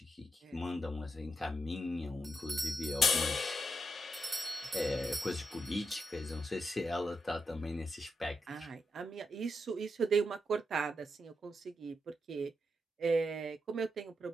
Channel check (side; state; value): both; normal; correlation 0.84